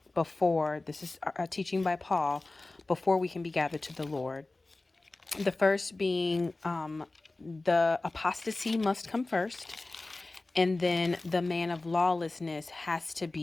before, this is a teaching by Paul, before we can be gathered to the Lord. The first being the apostasy must come first. And then the man of lawlessness has to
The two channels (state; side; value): quieter; right; 3.1 dB